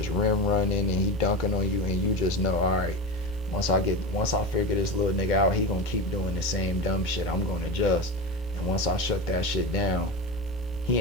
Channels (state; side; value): normal; both; correlation 0.23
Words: rim running and he dunking on you and you just know, all right, once I figure this little nigga out, he gonna keep doing the same dumb shit. I'm gonna adjust. And once I shut that shit down, he